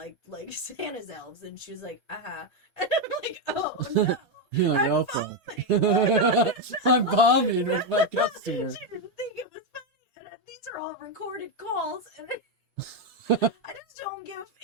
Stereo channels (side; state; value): both; normal; correlation 0.05